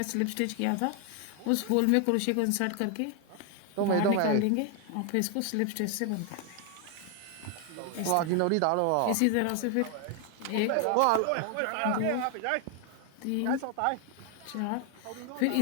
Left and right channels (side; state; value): both; different; correlation 0.00